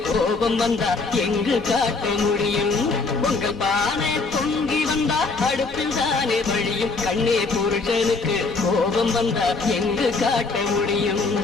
கோபம் வந்தா எங்கு காட்ட முடியும் பொங்கல் பானை பொங்கி வந்தால் அடுப்பில் தானே வழியும் கண்ணே புருஷனுக்கு கோபம் வந்தா எங்கு காட்ட முடியும்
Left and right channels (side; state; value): right; quieter; 3.9 dB